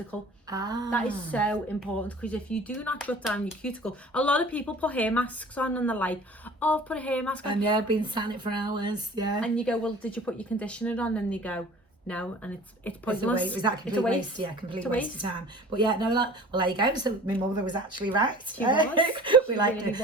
That is so important, because if you do not shut down your cuticle, a lot of people put hair masks on and they're like, oh, I've put a hair mask on. And yeah, I've been sat it for hours, yeah. And you go, well, did you put your conditioner on? And they go, no, and it's pointless. Is that complete waste? Yeah, complete waste of time. But yeah, no, well, there you go. So my mother was actually right. She was. We liked it.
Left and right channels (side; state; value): both; normal; correlation 0.45